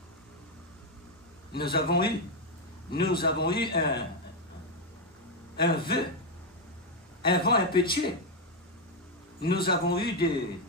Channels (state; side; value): normal; both; correlation 0.04